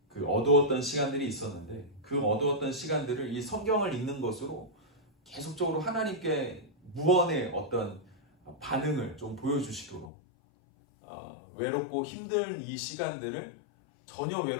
그 어두웠던 시간들이 있었는데, 그 어두웠던 시간들을 이 성경을 읽는 것으로 계속적으로 하나님께 무언의 어떤 반응을 좀 보여주시도록, 외롭고 힘든 이 시간들을 전혀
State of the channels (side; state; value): right; drops out; at 10.1 s